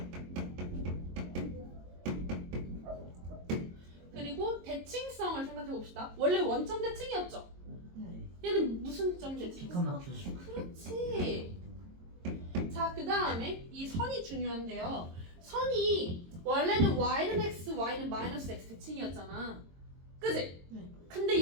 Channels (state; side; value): late; left; 22 ms